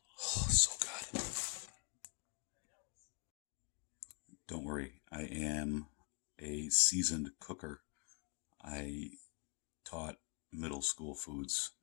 Oh, so good. Don't worry, I am a seasoned cooker. I taught middle school foods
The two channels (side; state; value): right; quieter; 34.4 dB